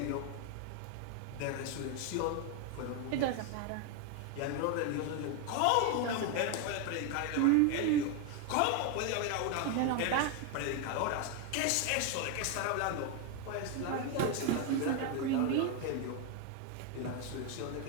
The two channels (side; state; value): both; different; correlation 0.01